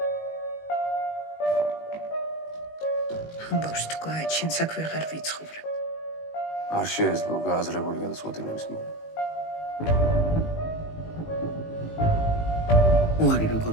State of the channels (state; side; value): late; right; 19 ms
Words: ამბავს თუ გააჩენ საქმე აღარ ვიცხოვრებ. არ შეეძლო გააზრებული გადაწყვეტილების მიღება. უარი